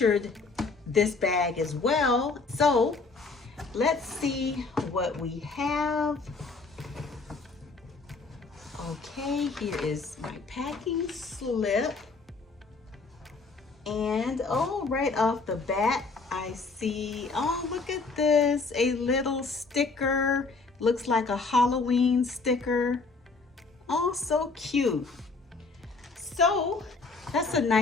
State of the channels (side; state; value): right; quieter; 4.1 dB